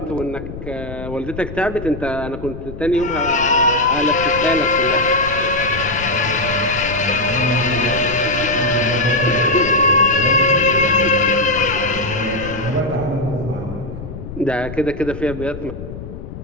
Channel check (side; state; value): left; noise; rumble, 11 dB below the sound